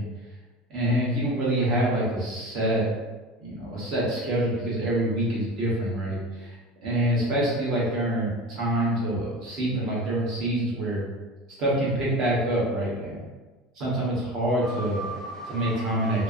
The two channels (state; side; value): normal; both; correlation 0.32